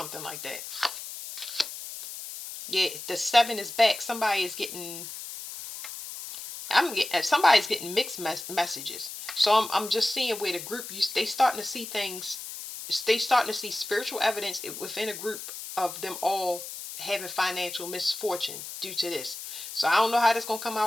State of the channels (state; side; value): noise; left; hiss, 10 dB below the sound